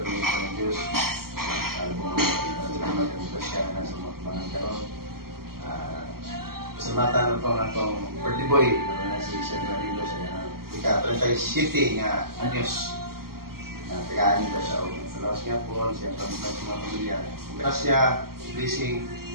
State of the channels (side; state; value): left; late; 0.93 ms